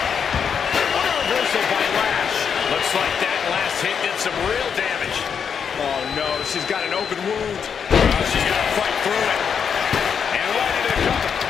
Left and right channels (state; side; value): quieter; right; 7.0 dB